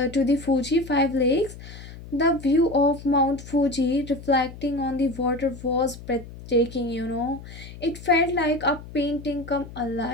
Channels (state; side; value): noise; left; hum, 15 dB below the sound